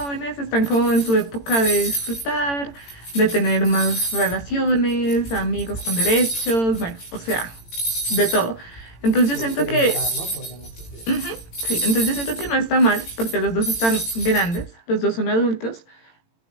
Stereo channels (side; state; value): right; late; 18 ms